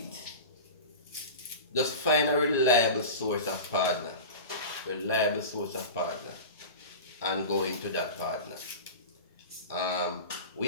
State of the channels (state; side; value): inverted; both; correlation -0.31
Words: it. Just find a reliable source of partner. And go into that partner.